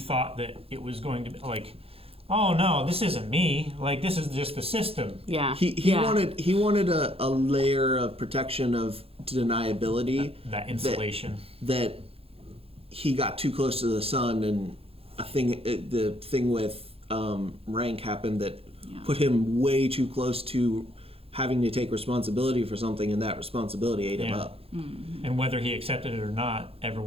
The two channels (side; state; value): left; late; 0.28 ms